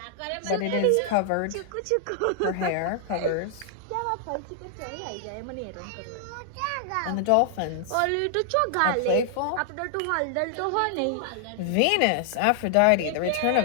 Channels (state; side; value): different; both; correlation 0.00